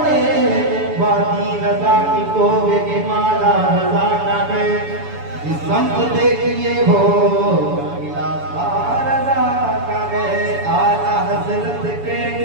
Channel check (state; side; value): late; left; 7.0 ms